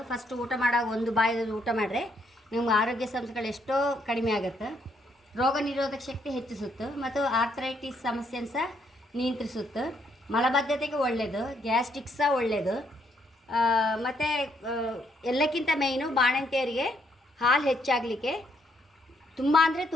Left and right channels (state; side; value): normal; both; correlation 0.73